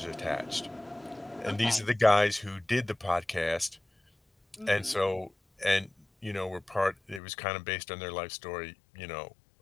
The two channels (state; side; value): drops out; right; at 7.2 s